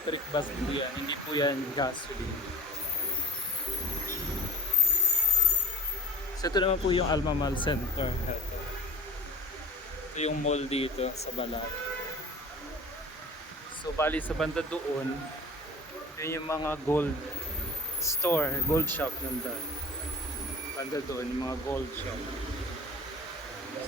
bus po yan, hindi po yan gasoline. So ito naman po yung Alma Mall Center. Ito yung mall dito sa Balad. So bali sa banda doon, yun yung mga gold store, gold shop nandun. Banda doon, yung mga gold shop.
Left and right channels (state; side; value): normal; both; correlation 0.39